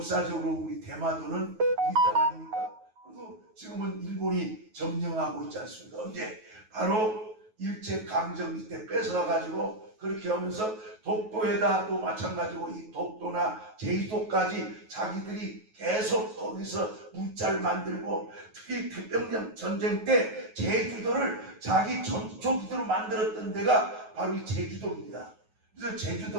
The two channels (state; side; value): late; left; 9.3 ms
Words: 우리 대마도는 우리 땅 아닙니까? 그래도 지금은 일본이 점령하고 있지 않습니까? 언제? 바로 일제강점기 때 뺏어가가지고 그렇게 하면서 독도에다 또 마찬가지고 이 독도나 제주도까지 자기들이 계속 거기서 문자를 만들고, 특히 태평양 전쟁 때 제주도를 자기 전초기지로 만들었던 데가 바로 이 제주도입니다. 그래서